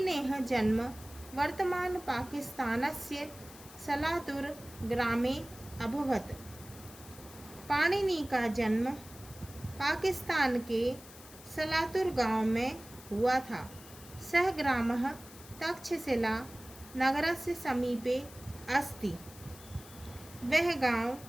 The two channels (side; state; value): left; noise; hiss, 18 dB below the sound